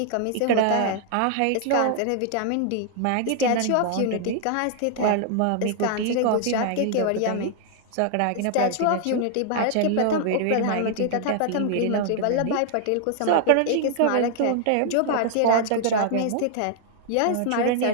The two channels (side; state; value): both; different; correlation 0.00